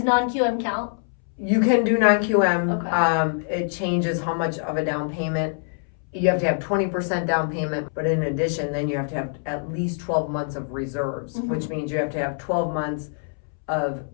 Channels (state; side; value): silent; right; 62 dB below the other